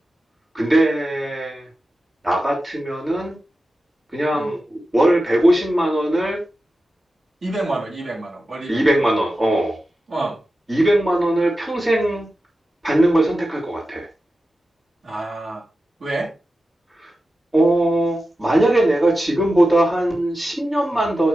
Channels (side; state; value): both; normal; correlation 0.92